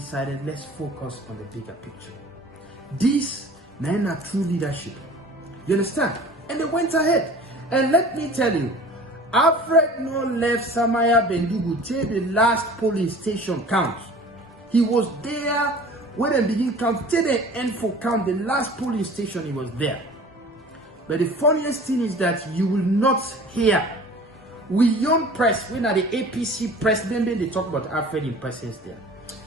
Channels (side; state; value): both; normal; correlation 0.44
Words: let's focus on the bigger picture. This men are true leadership. You understand? And they went ahead. And let me tell you, Alfred no left Samaya Bendugu till the last polling station count. He was there when they begin count till the end for count. The last polling station he was there. But the funniest thing is that you will not hear. We young press, when at the APC president, they talk about Alfred in presence there.